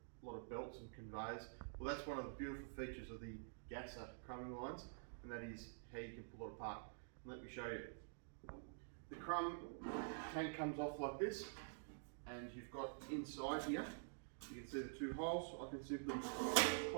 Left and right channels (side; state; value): left; silent; digital silence